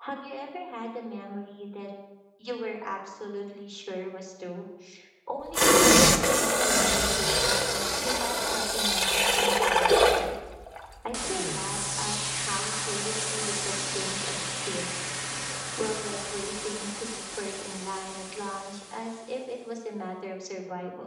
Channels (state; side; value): identical; both; correlation 1.00